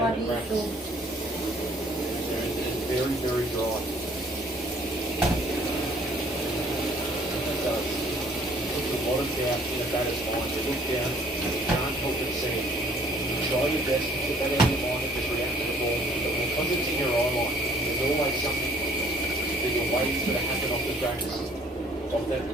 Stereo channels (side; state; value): both; normal; correlation 0.57